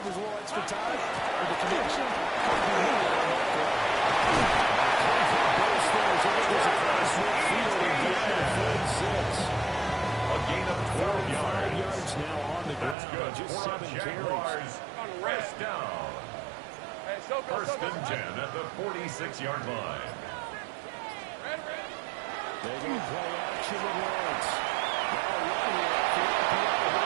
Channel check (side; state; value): left; drops out; at 13.0 s